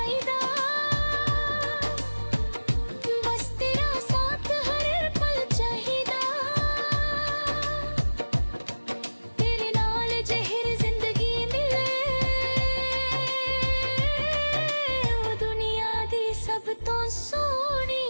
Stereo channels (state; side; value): inverted; both; correlation -1.00